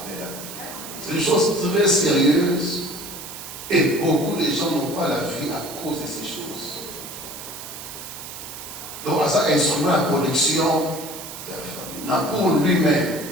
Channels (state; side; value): noise; right; hiss, 11 dB below the sound